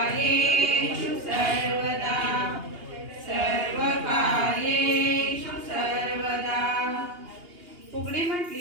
सर्वदा सर्वकार्येषु सर्वदा। फुगडी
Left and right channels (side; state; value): left; late; 2.8 ms